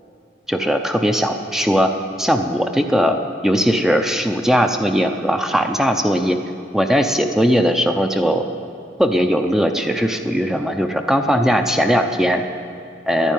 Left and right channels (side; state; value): both; normal; correlation 0.80